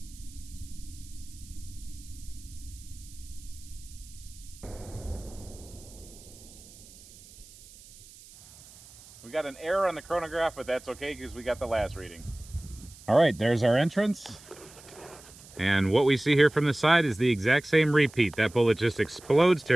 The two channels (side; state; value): right; noise; hiss, 21 dB below the sound